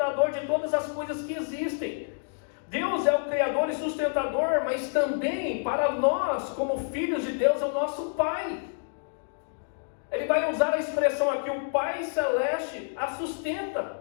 de todas as coisas que existem. Deus é o Criador e sustentador, mas também para nós, como filhos de Deus, é o nosso Pai. Ele vai usar a expressão aqui, o Pai Celeste a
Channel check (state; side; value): silent; right; digital silence